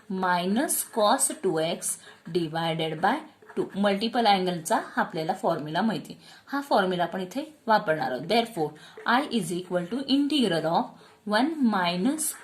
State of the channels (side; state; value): both; identical; correlation 1.00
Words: minus cos 2x divided by 2. Multiple अँगलचा हा आपल्याला फॉर्म्युला माहिती. हा फॉर्म्युला आपण इथे वापरणार आहोत. Therefore I is equal to integral of 1 minus